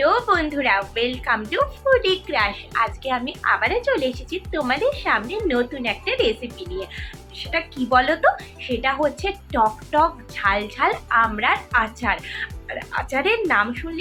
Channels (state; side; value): identical; both; correlation 1.00